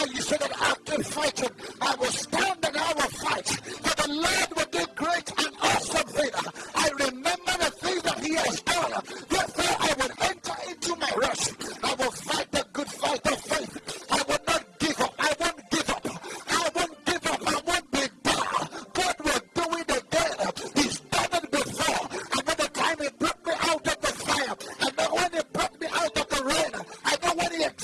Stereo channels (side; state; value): both; identical; correlation 1.00